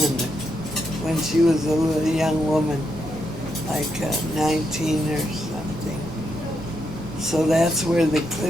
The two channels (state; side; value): normal; both; correlation 0.81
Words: when she was a little young woman, like 19 or something. So that's where the